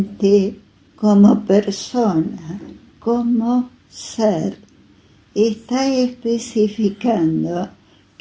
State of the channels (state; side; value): identical; both; correlation 1.00